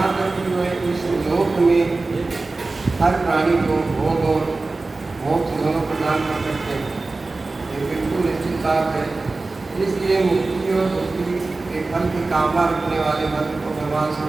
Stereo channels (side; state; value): left; quieter; 3.5 dB